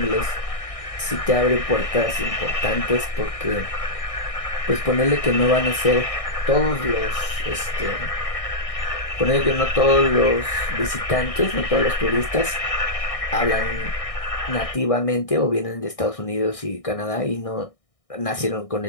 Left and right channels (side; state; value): right; late; 1.6 ms